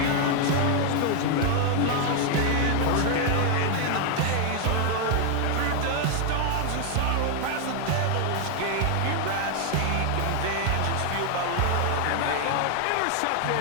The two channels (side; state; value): both; different; correlation 0.00